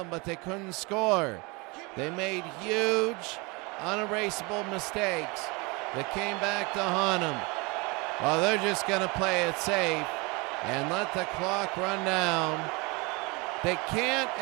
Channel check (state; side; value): quieter; left; 27.3 dB